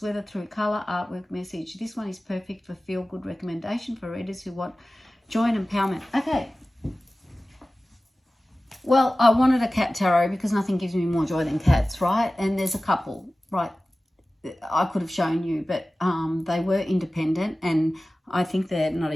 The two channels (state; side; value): normal; both; correlation 0.97